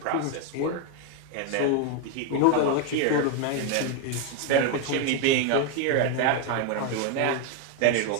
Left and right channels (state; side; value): different; both; correlation 0.01